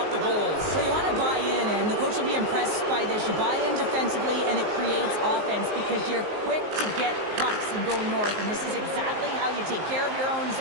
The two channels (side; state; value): left; late; 19 ms